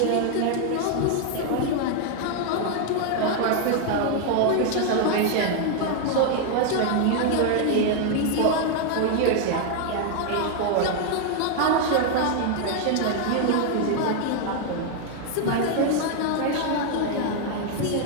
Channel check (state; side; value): different; both; correlation 0.00